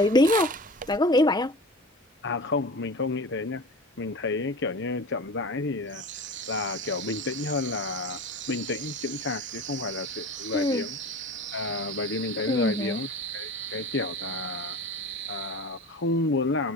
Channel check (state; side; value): normal; both; correlation 0.33